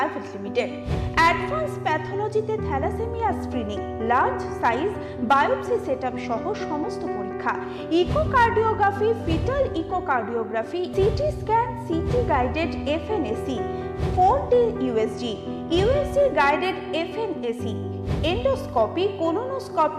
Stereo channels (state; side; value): identical; both; correlation 1.00